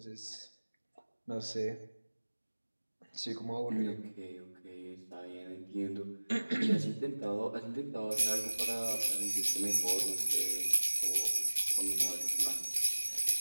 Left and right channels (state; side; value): inverted; both; correlation -1.00